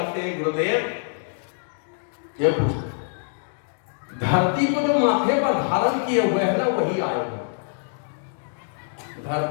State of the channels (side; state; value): right; silent; digital silence